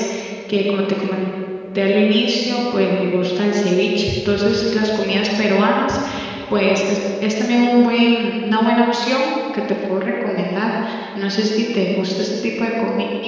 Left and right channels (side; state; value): both; identical; correlation 1.00